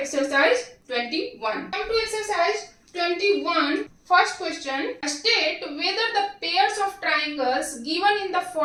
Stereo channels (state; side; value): identical; both; correlation 1.00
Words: 21. Come to exercise 21. First question. State whether the pairs of triangles given in the